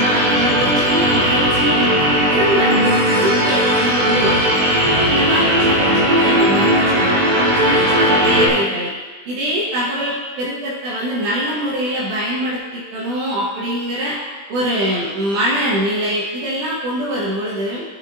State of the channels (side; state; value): left; late; 20 ms